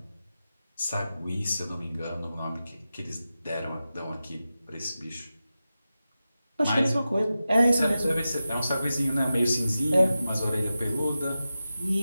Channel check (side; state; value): both; inverted; correlation -0.93